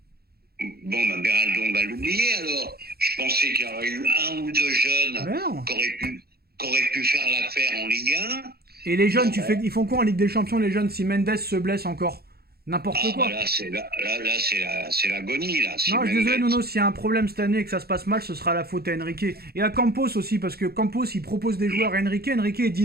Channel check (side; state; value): left; late; 0.46 ms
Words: Beraldo, on va l'oublier alors. Je pensais qu'il y aurait eu 1 ou 2 jeunes qui auraient pu faire l'affaire en Ligue 1. Et les jeunes, ils font quoi en Ligue des Champions, les jeunes, si Mendes se blesse encore? N'importe quoi. Là, c'est l'agonie, là. Non, je suis désolé, Nono, s'il y a un problème cette année et que ça se passe mal, ce sera la faute à Enrique. Et à Campos aussi, parce que Campos, il propose des joueurs à Enrique il dit